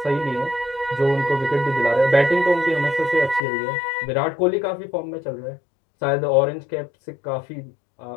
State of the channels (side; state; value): right; drops out; at 3.4 s